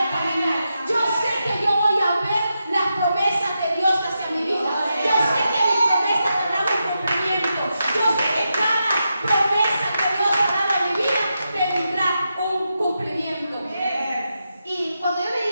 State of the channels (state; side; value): inverted; both; correlation -0.87